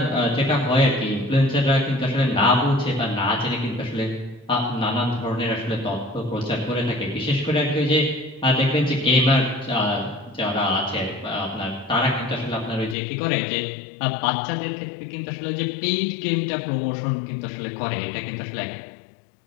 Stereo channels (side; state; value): right; drops out; at 13.0 s